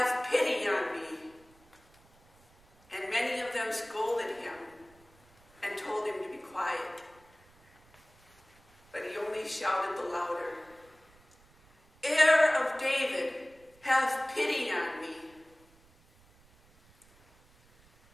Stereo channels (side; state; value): right; noise; rumble, 29 dB below the sound